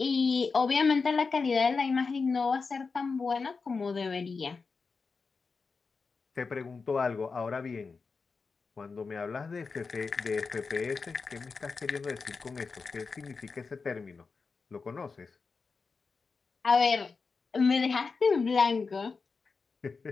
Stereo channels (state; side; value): quieter; right; 4.7 dB